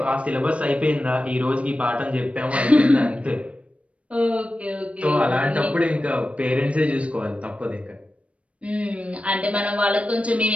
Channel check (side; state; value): left; late; 0.063 ms